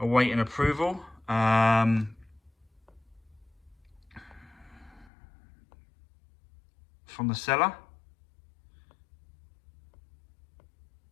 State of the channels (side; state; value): right; drops out; at 5.1 s